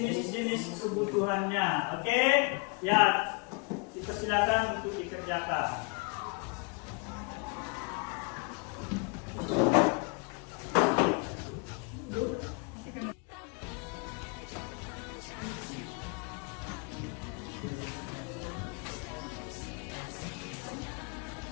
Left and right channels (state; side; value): quieter; right; 34.7 dB